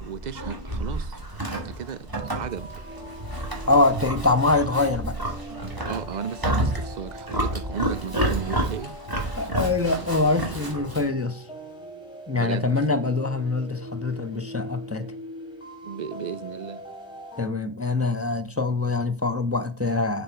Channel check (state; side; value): late; left; 1.0 ms